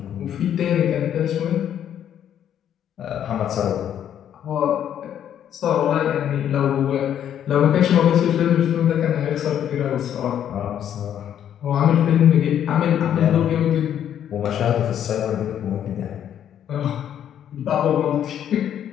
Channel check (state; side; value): quieter; right; 9.9 dB